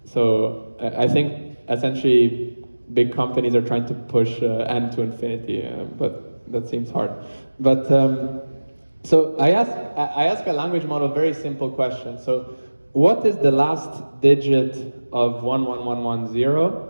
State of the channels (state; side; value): inverted; both; correlation -1.00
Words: I think essentially big companies are trying to push n to infinity, but that seems hard. But so I ask a language model a very simple question. So what is the last digit of 11110?